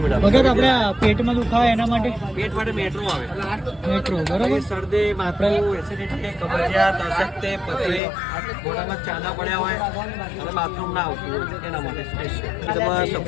વગર આપણે પેટમાં દુખાવે એના માટે पेट માટે મેટ્રો આવે, મેટ્રો બરોબર. શરદી, માથું, એસિડિટી, કબજિયાત, અશક્તિ, પછી મોઢામાં ચાંદા પડ્યા હોય અને બાથરૂમ ના આવતું હોય એના માટે સ્પેશિયલ તમારા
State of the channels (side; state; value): right; drops out; at 8.0 s